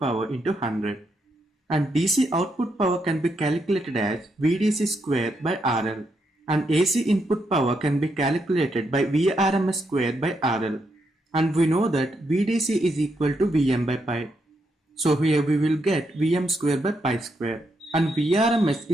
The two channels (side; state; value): both; normal; correlation 0.80